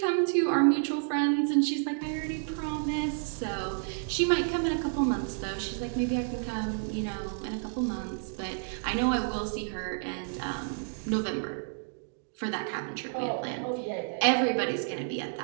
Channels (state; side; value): silent; left; digital silence